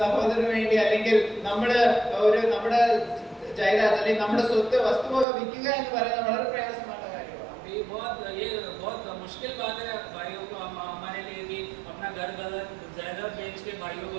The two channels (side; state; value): left; drops out; at 5.2 s